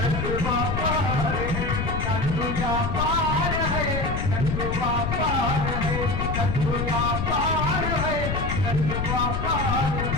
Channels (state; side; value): noise; left; rumble, 2 dB below the sound